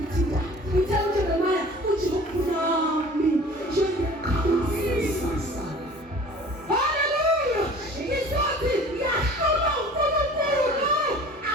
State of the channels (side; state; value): both; normal; correlation 0.46